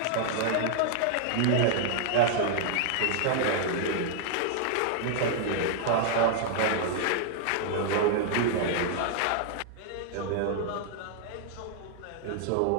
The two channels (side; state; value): both; different; correlation 0.00